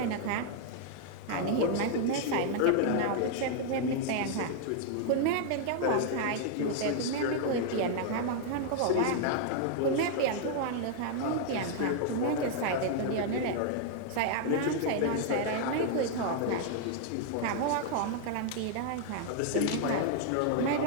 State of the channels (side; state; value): both; different; correlation 0.00